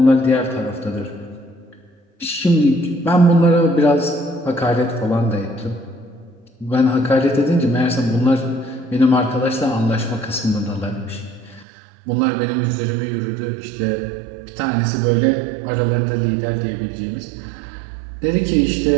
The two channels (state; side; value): drops out; left; at 11.7 s